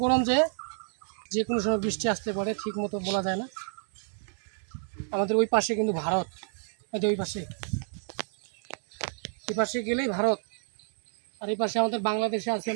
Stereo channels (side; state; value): left; silent; 58 dB below the other